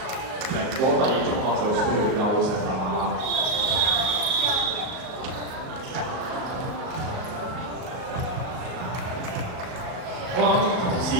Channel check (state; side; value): late; left; 38 ms